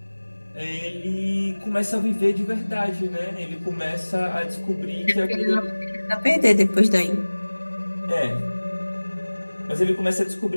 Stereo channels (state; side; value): inverted; both; correlation -1.00